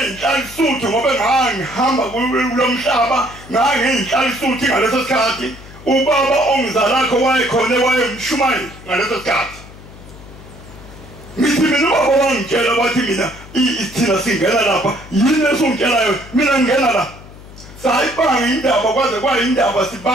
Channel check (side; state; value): left; noise; hum, 18 dB below the sound